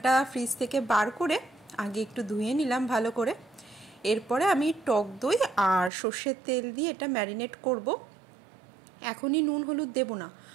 ফ্রিজ থেকে বার করে আগে একটু ধুয়ে নিলাম ভালো করে। এরপরে আমি টক দই আর সর্ষের তেল দিয়ে এটা ম্যারিনেট করব। এখনই নুন হলুদ দেবো না,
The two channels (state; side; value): drops out; left; at 5.9 s